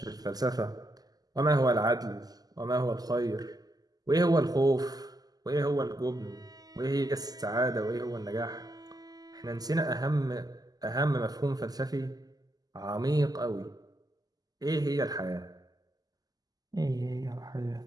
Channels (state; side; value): late; left; 0.18 ms